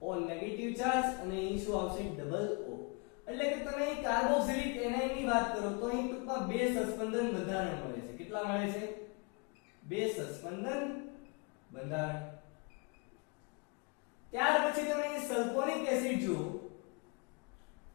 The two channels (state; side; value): quieter; right; 32.6 dB